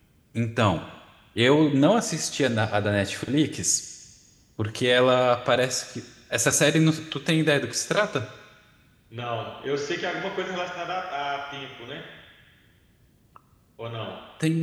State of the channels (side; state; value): both; identical; correlation 1.00